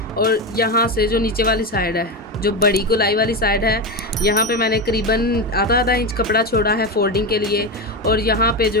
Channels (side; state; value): both; normal; correlation 0.15